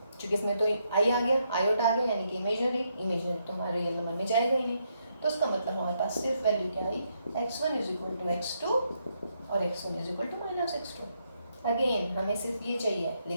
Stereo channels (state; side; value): inverted; both; correlation -0.78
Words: क्योंकि इसमें तो आई आ गया, आयोटा आ गया, यानी कि इमेजनरी तो हमारे रियल नंबर में जाएगा ही नहीं। तो इसका मतलब हमारे पास सिर्फ वैल्यू क्या आई, x1 is equal to x2 और x1 is equal to minus x2। Again हमें सिर्फ ये चाहिए,